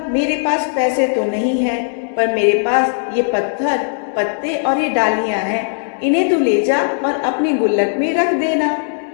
मेरे पास पैसे तो नहीं है, पर मेरे पास ये पत्थर पत्ते और ये डालियां हैं, इन्हें तू ले जा और अपनी गुल्लक में रख देना।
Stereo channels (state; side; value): silent; right; digital silence